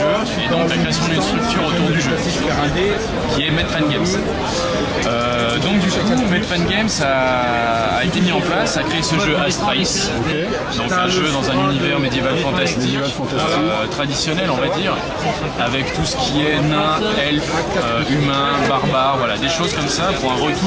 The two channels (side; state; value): both; identical; correlation 1.00